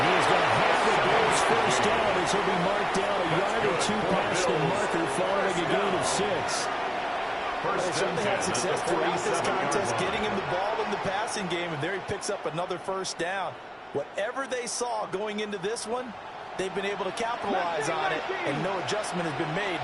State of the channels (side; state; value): both; identical; correlation 1.00